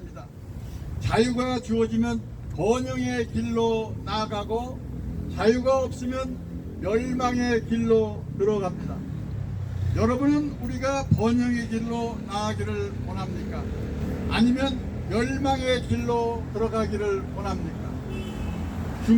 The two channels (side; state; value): both; identical; correlation 1.00